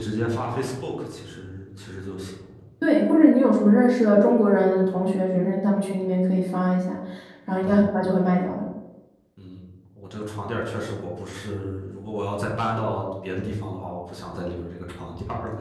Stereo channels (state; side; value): identical; both; correlation 1.00